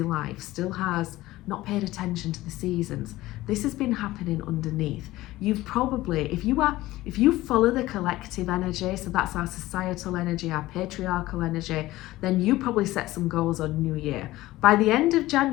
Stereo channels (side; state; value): right; quieter; 17.2 dB